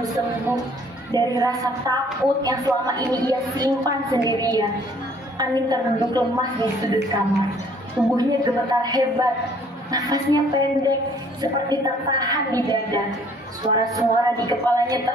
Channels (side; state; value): both; normal; correlation 0.59